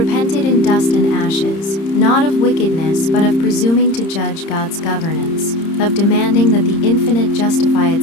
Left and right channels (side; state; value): right; late; 30 ms